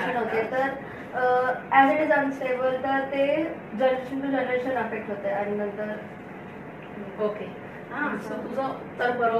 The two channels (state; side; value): identical; both; correlation 1.00